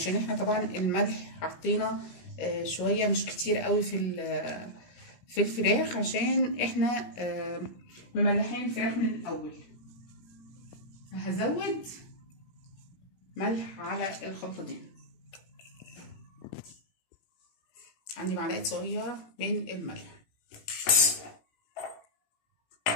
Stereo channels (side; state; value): right; late; 17 ms